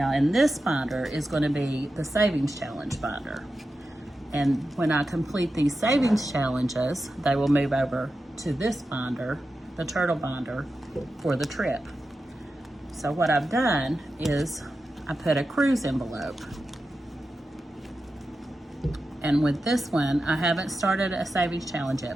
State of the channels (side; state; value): both; normal; correlation 0.91